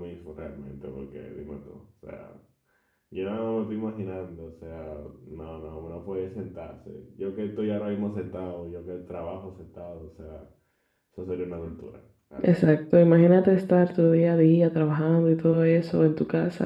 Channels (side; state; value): both; identical; correlation 1.00